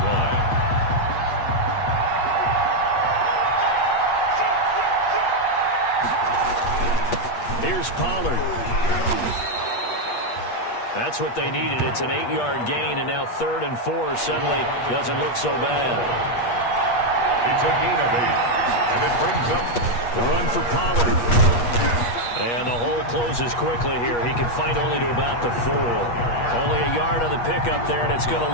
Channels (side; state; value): right; late; 8.4 ms